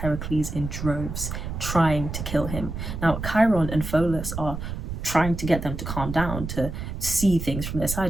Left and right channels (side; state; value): right; noise; rumble, 6 dB below the sound